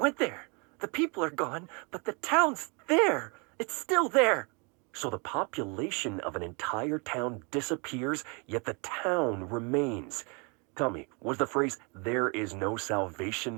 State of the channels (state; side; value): quieter; left; 32.3 dB